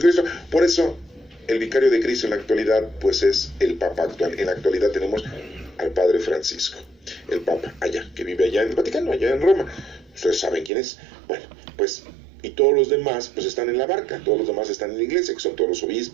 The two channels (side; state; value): left; drops out; at 10.7 s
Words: Por eso el vicario de Cristo en la actualidad pues es el papa actual. En la actualidad tenemos al padre Francisco, el papa allá, que vive allá en el Vaticano, allá en Roma. Ustedes saben quién es. Bueno, pues, y todos los demás pues están en la barca, todos los demás están en la iglesia, que son todos los